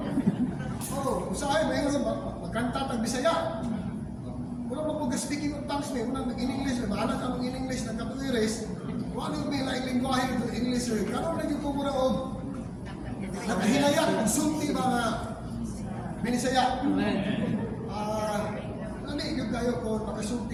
Usahay, may nga magkanta tag Bisaya. Wala mo po speaking of tongues may unang nag-in-English. Bahala ka ng in-English na katuiris. Wala yung may laing lingwahe ng English. Karoon na yung kumura o nakahinaya. Sulti mga Binisaya. Yung kayo ko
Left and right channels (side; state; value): both; identical; correlation 1.00